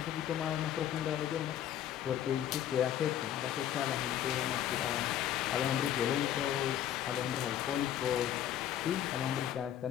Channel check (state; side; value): quieter; right; 11.0 dB